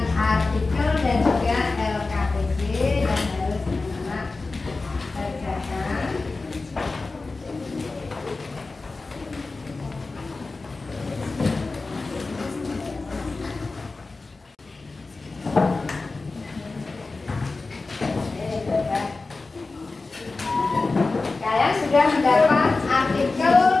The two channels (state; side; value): quieter; right; 3.7 dB